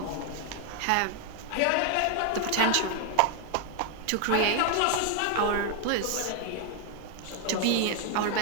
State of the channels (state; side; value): different; both; correlation 0.01